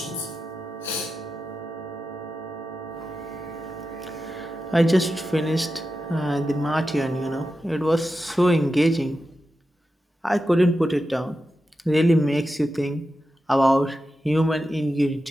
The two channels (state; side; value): normal; both; correlation 0.91